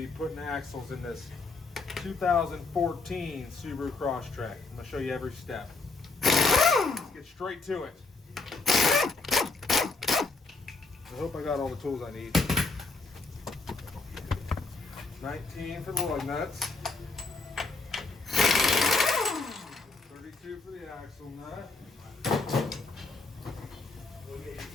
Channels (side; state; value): right; quieter; 3.8 dB